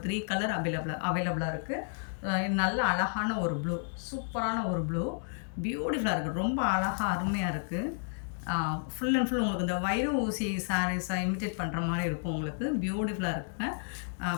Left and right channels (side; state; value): right; silent; digital silence